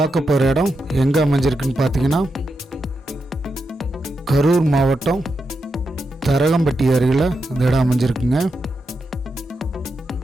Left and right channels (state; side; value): normal; both; correlation 0.86